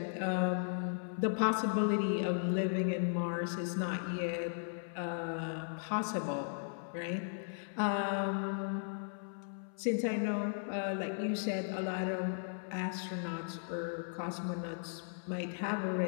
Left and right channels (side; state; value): right; silent; 53 dB below the other